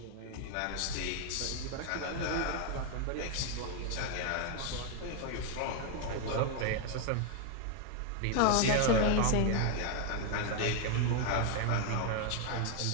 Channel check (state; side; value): different; both; correlation 0.01